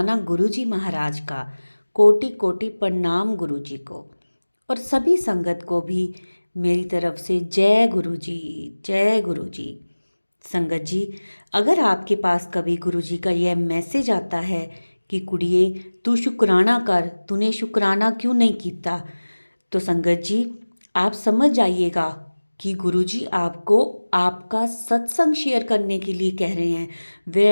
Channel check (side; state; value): both; inverted; correlation -1.00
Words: गुरु जी महाराज का। कोटि कोटि प्रणाम गुरु जी को। और सभी संगत को भी मेरी तरफ से जय गुरु जी। जय गुरु जी। संगत जी, अगर आपके पास कभी गुरु जी का यह मैसेज आता है कि कुड़िए तू शुक्राना कर, तूने शुक्राना क्यों नहीं किया, तो संगत जी आप समझ जाइएगा कि गुरुजी आपको आपका सत्संग शेयर करने के लिए कह रहे हैं। वे